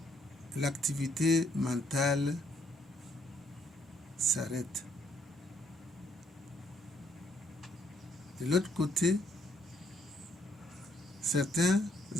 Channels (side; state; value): both; normal; correlation 0.70